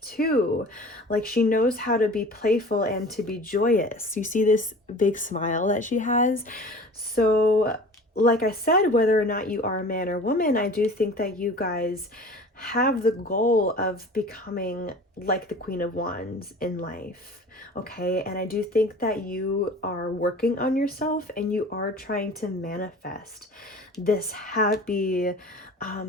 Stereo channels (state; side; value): normal; both; correlation 0.41